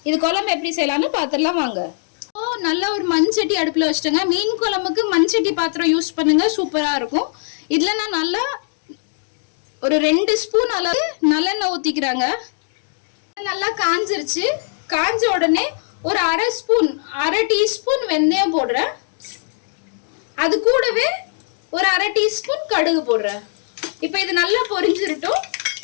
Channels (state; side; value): silent; right; digital silence